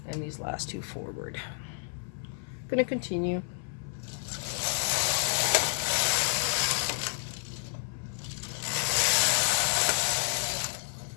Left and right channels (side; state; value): right; silent; 55 dB below the other